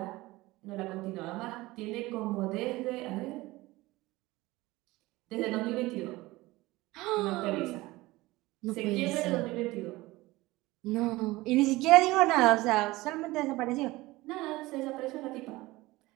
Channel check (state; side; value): quieter; left; 19.7 dB